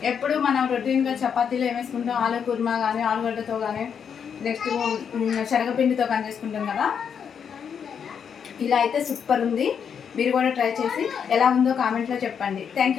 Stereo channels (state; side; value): quieter; right; 7.3 dB